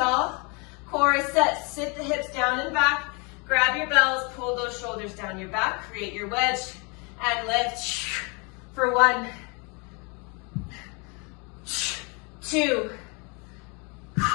Core is set. Sit the hips down and back. Grab your bells. Pull those shoulders down your back. Create your wedge. And lift. For 1, 2,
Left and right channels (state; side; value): quieter; right; 31.7 dB